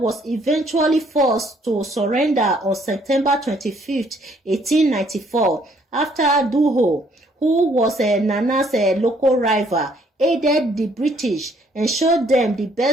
eventually forced to surrender on September 25, 1894, after Duho, who was Nana's local rival, aided the British and showed them the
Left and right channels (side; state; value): both; normal; correlation 0.65